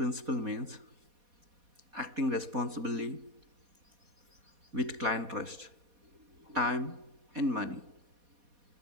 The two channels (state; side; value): late; left; 4.2 ms